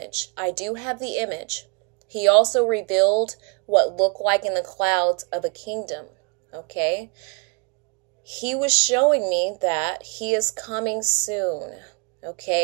I do have the image. He also revealed what looked like in the clouds of a kingdom, okay? He was showing me that he is coming soon,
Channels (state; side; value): quieter; left; 32.9 dB